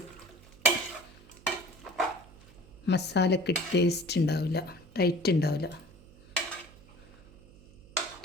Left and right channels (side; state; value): right; noise; hum, 23 dB below the sound